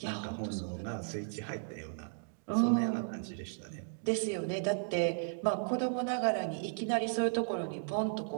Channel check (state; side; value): silent; left; digital silence